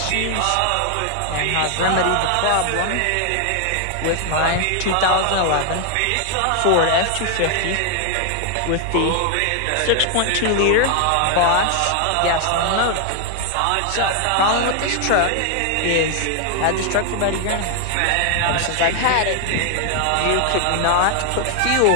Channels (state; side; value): different; both; correlation 0.00